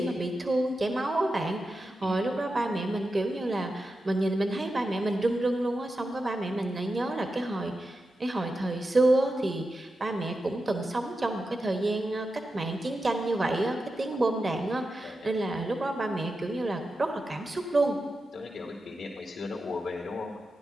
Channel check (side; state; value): both; normal; correlation 0.90